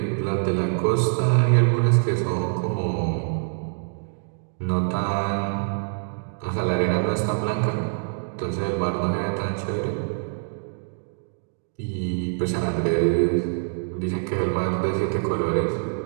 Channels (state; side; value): silent; left; digital silence